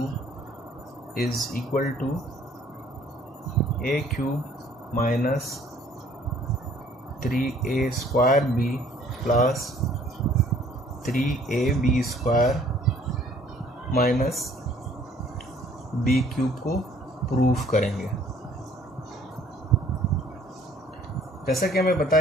is equal to a cube minus 3a square B plus 3ab square minus B cube को proof करेंगे। जैसा कि हमें पता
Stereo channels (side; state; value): both; normal; correlation 0.58